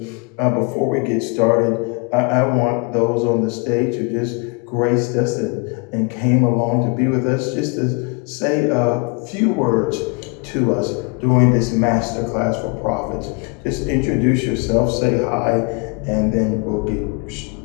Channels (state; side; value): quieter; right; 31.8 dB